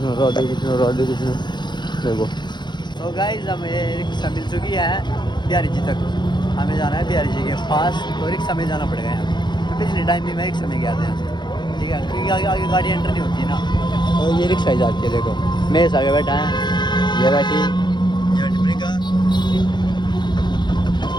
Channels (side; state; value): right; late; 0.21 ms